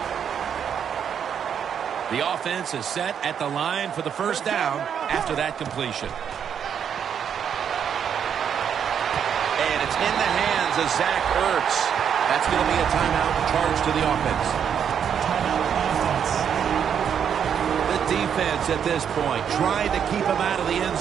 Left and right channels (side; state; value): left; quieter; 8.1 dB